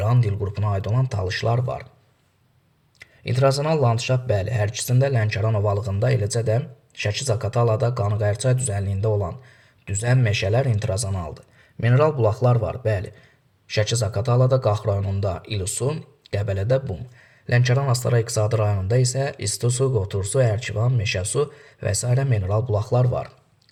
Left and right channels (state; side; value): identical; both; correlation 1.00